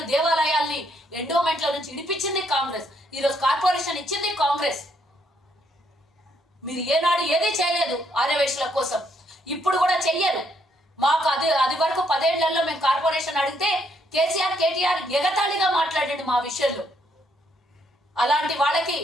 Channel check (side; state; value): both; normal; correlation 0.72